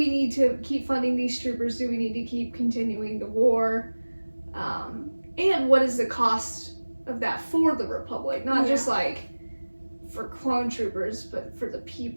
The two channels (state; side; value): inverted; both; correlation -1.00